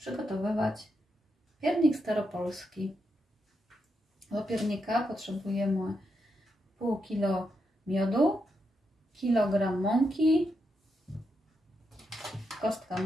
piernik staropolski. Do piernika potrzebujemy pół kilo miodu, kilogram mąki, kostka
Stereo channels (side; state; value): both; normal; correlation 0.83